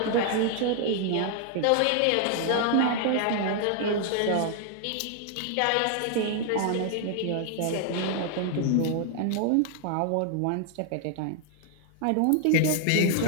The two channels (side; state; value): both; different; correlation 0.00